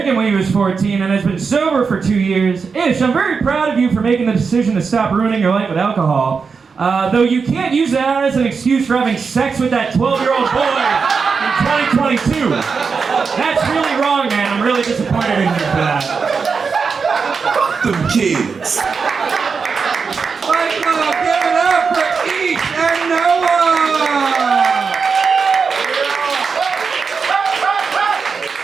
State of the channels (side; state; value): left; quieter; 5.3 dB